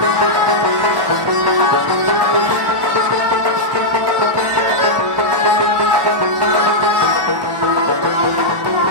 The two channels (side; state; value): left; late; 1.1 ms